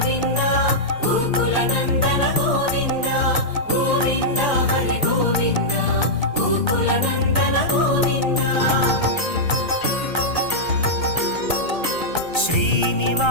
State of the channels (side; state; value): right; late; 1.3 ms